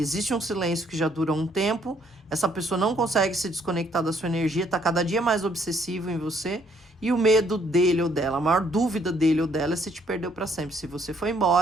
um silêncio que já dura um tempo, essa pessoa não consegue se desconectar da sua energia, tá cada dia mais obsessivo em você, e o medo dele ou dela, a maior dúvida dele ou dela é se te perdeu para sempre, se você foi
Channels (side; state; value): both; normal; correlation 0.67